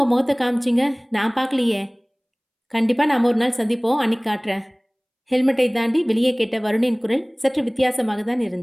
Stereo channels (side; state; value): both; identical; correlation 1.00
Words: முகத்தை காமிச்சிங்க, நான் பார்க்கலையே. கண்டிப்பாக நாம் ஒரு நாள் சந்திப்போம், அன்னைக்கு காட்டுறேன். ஹெல்மெட்டை தாண்டி வெளியே கேட்ட வருணின் குரல் சற்று வித்தியாசமாக தான்